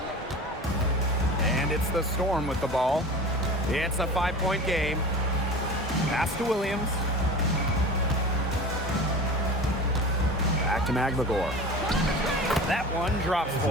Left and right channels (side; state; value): both; normal; correlation 0.35